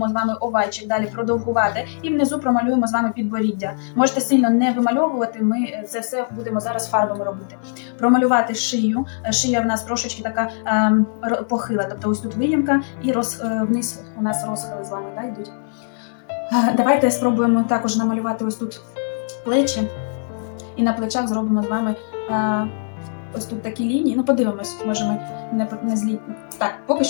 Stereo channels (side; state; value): right; silent; digital silence